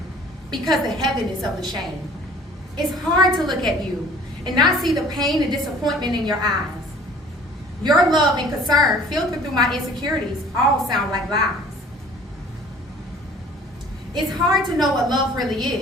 because the heaviness of the shame. It's hard to look at you and not see the pain and disappointment in your eyes. Your love and concern filtered through my insecurities all sound like lies. It's hard to know what love really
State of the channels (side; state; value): both; normal; correlation 0.51